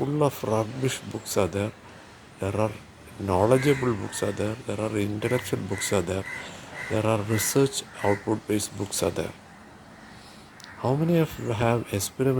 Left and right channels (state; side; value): identical; both; correlation 1.00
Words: of rubbish books are there. There are knowledgeable books are there. There are intellectual books are there. There are research output based books are there. How many of you have